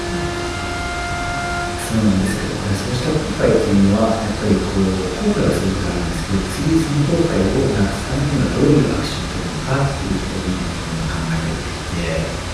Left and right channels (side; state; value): both; identical; correlation 1.00